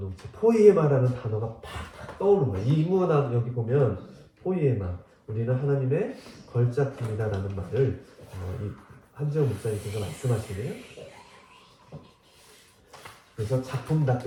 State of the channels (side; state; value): both; identical; correlation 1.00